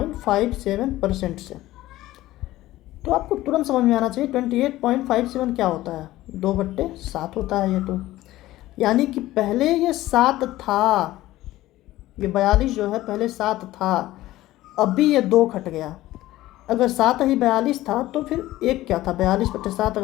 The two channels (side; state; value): right; quieter; 16.2 dB